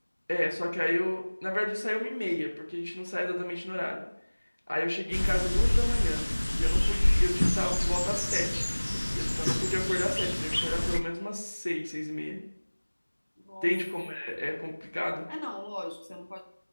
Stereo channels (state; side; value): inverted; both; correlation -1.00